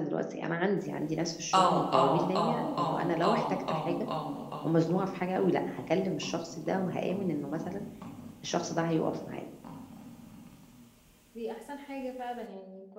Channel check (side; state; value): both; identical; correlation 1.00